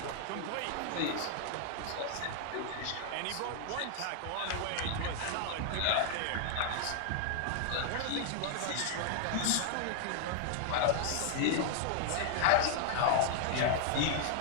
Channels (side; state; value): both; different; correlation 0.00